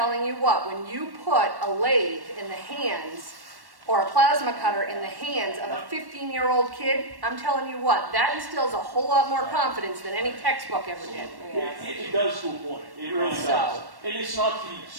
you what, when you put a lathe in the hands or a plasma cutter in the hands of a 15-year-old kid, I'm telling you what, that instills a whole lot more confidence than any textbook ever did. It does to a point. It really does. And it's not the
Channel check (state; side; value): late; left; 1.1 ms